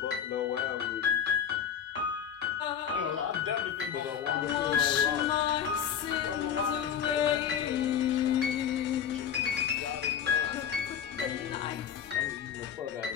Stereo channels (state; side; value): quieter; right; 8.5 dB